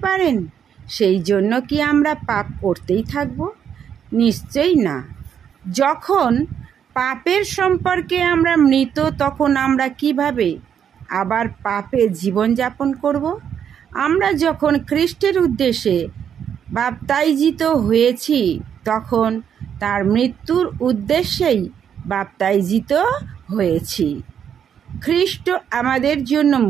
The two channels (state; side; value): quieter; left; 8.4 dB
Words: সেই জন্য কি আমরা পাপ করতেই থাকব? নিশ্চয়ই না। যখন পাপের সম্পর্কে আমরা মৃত, তখন আমরা কিভাবে আবার পাপে জীবনযাপন করব? আমরা যখন খ্রিস্টের উদ্দেশ্যে বাপ্তাইজিত হয়েছি, তখন তার মৃত্যুর উদ্দেশ্যেই বাপ্তাইজিত হয়েছি। খ্রিস্ট আমাদের জন্য